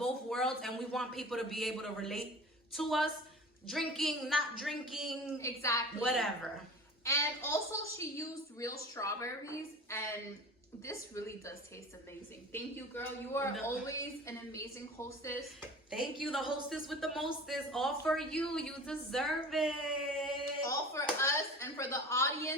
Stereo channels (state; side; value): normal; both; correlation 0.38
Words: worlds, and we want people to be able to relate to us. Drinking, not drinking. Exactly. Whatever. And also she used real strawberries, and this really does taste amazing. Thank you, girl. You are always an amazing hostess. Thank you, the hostess with the mostest. All for you. You deserve it. All for us and for the